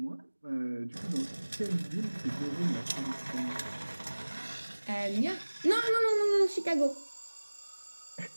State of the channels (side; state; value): both; inverted; correlation -1.00